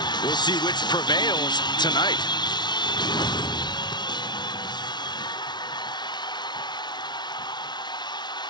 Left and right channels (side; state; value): right; late; 0.20 ms